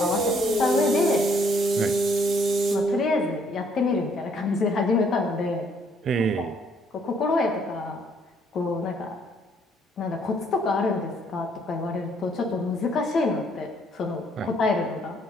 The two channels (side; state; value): both; normal; correlation 0.66